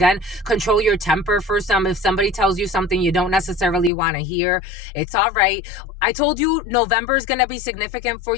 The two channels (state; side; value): drops out; right; at 3.9 s